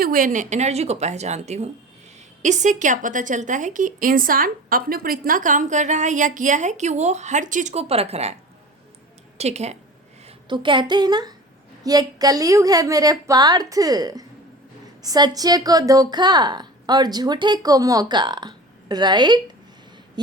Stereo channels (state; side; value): normal; both; correlation 0.37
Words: हुए एनर्जी को पहचानती हूँ। इससे क्या पता चलता है कि इंसान अपने ऊपर इतना काम कर रहा है या किया है कि वो हर चीज़ को परख रहा है, ठीक है? तो कहते हैं ना, ये कलयुग है मेरे पार्थ, सच्चे को धोखा और झूठे को मौका, राइट?